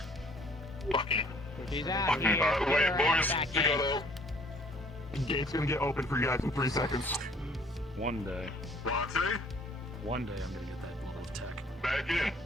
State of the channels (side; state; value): both; normal; correlation 0.57